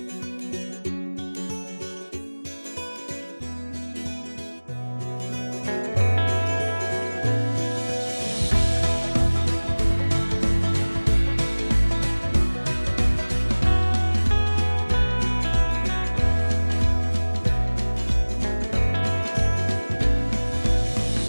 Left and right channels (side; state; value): both; inverted; correlation -1.00